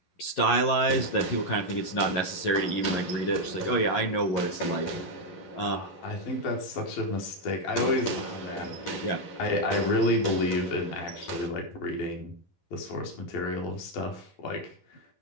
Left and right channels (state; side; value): late; right; 11 ms